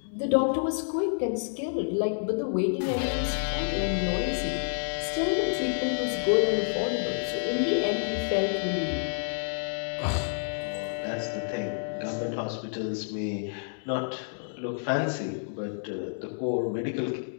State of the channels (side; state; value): right; silent; digital silence